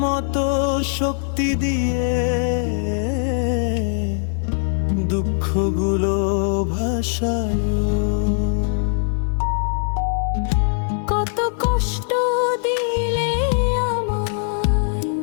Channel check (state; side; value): silent; right; digital silence